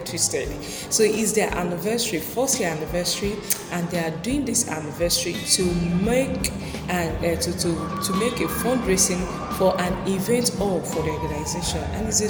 twisted. So it's their anniversary, first year anniversary, and they are doing this anniversary to make to make a fundraising for an event all for the organization, and it's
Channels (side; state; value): both; identical; correlation 1.00